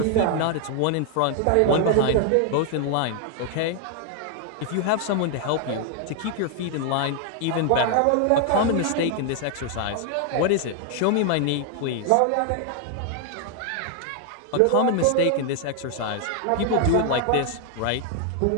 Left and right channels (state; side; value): different; both; correlation 0.00